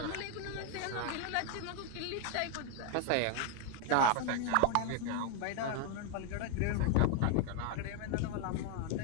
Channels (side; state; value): both; different; correlation 0.01